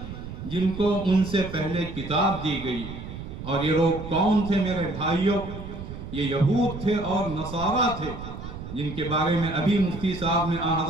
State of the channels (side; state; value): right; noise; rumble, 10 dB below the sound